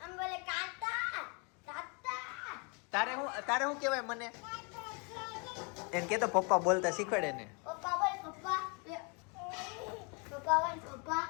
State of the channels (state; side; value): quieter; right; 34.0 dB